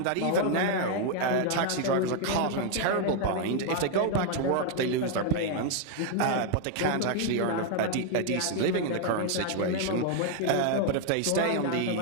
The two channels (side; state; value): both; different; correlation 0.00